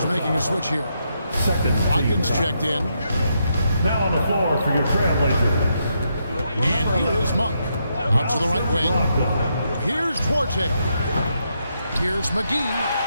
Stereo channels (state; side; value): inverted; both; correlation -0.80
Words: making a switch here. Watkins checked in. Now on the floor for your Trailblazers. And here is Monk. Out to the right wing. Here's Duarte. Here's McGee.